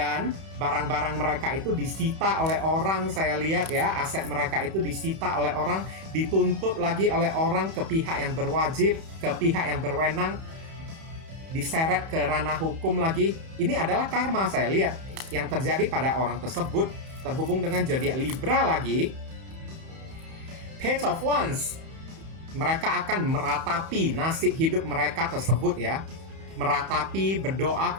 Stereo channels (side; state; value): left; late; 31 ms